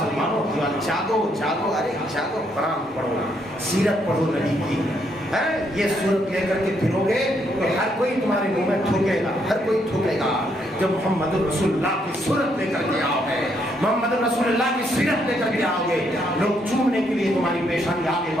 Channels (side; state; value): both; normal; correlation 0.74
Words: جاگو، ارے جاگو، قرآن پڑھو، سیرت پڑھو نبی کی. یہ صورت لے کر کے پھرو گے تو ہر کوئی تمہارے منہ میں تھوکے گا، ہر کوئی تھوکے گا. جب محمد رسول اللہ کی صورت لے کر کے آؤ گے، محمد رسول اللہ کی سیرت لے کر کے آؤ گے، لوگ چومنے کے لیے تمہاری پیشانی آگے